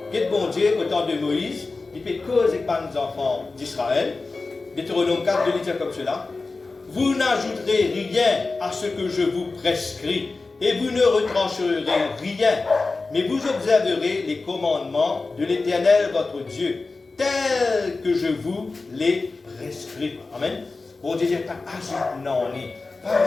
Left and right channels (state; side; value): quieter; right; 3.7 dB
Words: que bon Dieu, au temps de Moïse, il fait cause avec les enfants d'Israël. Deutéronome 4, 2, il dit comme cela. Vous n'ajouterez rien à ce que je vous prescris, et vous ne retrancherez rien, mais vous observerez les commandements de l'Éternel votre Dieu, tels que je vous les prescris. Amen. Bon Dieu, pas ajoute non, pas